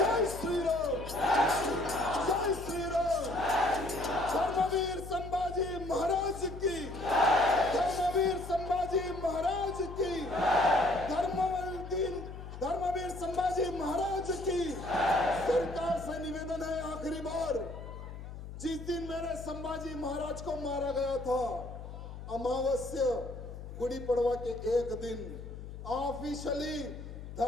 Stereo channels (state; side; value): noise; left; hum, 11 dB below the sound